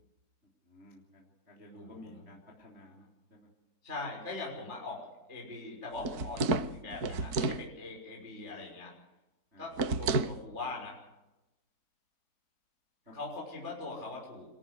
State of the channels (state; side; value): late; left; 4.5 ms